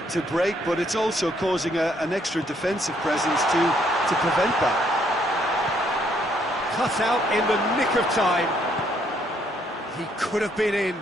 break, but it's also causing an extra defensive presence to prevent that. Cut out in the nick of time. He could have been in,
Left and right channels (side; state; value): both; normal; correlation 0.69